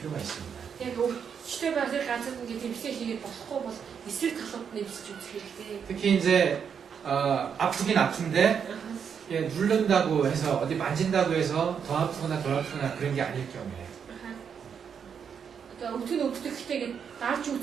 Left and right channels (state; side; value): quieter; left; 7.2 dB